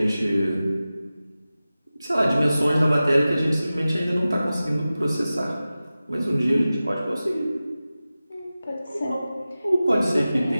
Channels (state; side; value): inverted; both; correlation -0.96